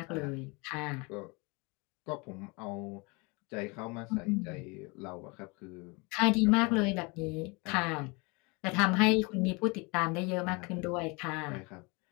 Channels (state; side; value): quieter; right; 28.7 dB